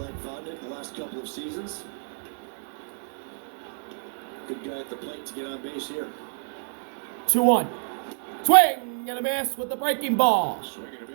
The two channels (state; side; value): silent; left; digital silence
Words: Vodnik the last couple of seasons. Good guy at the plate to get on base here. 2-1. Swing and a miss with the breaking ball. Swing and a